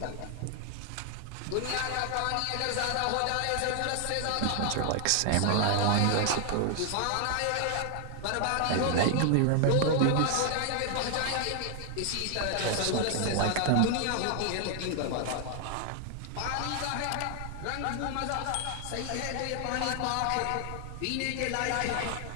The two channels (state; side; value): different; both; correlation 0.00